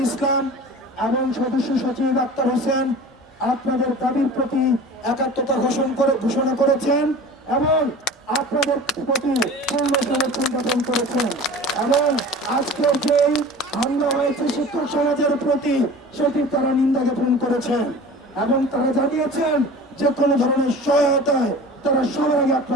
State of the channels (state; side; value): normal; both; correlation 0.39